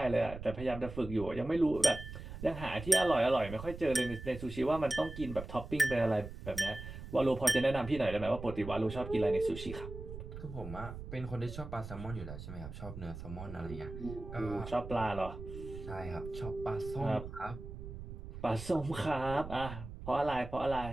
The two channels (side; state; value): right; noise; rumble, 10 dB below the sound